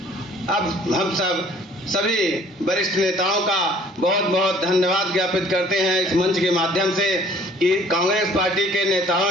अब हम सभी वरिष्ठ नेताओं का बहुत बहुत धन्यवाद ज्ञापित करते हैं इस मंच के माध्यम से कि कांग्रेस पार्टी के नेताओं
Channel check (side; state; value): both; normal; correlation 0.55